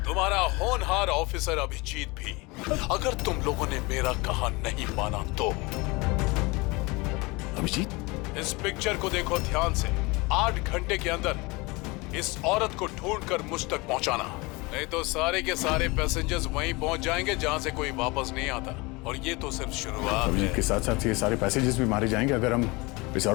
तुम्हारा होनहार ऑफिसर अभिजीत भी। अगर तुम लोगों ने मेरा कहा नहीं माना तो अभिजीत, इस पिक्चर को देखो ध्यान से। 8 घंटे के अंदर इस औरत को ढूंढकर मुझ तक पहुंचाना, नहीं तो सारे के सारे पैसेंजर्स वहीं पहुंच जाएंगे जहां से कोई वापस नहीं आता। और ये तो सिर्फ शुरुआत है। के साथ साथ ये सारे पैसेंजर्स भी मारे जाएंगे अगर हम इस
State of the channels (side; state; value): right; quieter; 25.0 dB